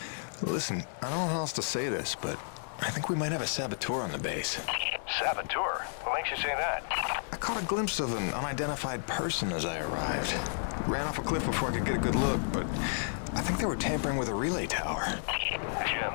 listen, I don't know how else to say this, but I think we might have a saboteur on the base. Saboteur? What makes you say that? I caught a glimpse of an unidentified person as I arrived. Ran off a cliff before I could get a good look, but I think they were tampering with a relay tower. Jim,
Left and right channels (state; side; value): silent; right; 57 dB below the other